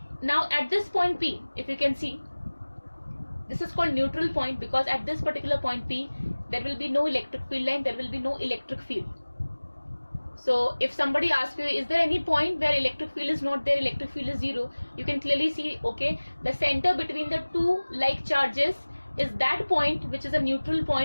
Now at this point P, if you can see, this is called neutral point, because at this particular point P, there will be no electric field line, there will be no electric field. So if somebody asks you, is there any point where electric field is not there, electric field is zero, you can clearly see, okay, the center between the two like charges is that point, which is a neutral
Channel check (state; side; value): inverted; both; correlation -1.00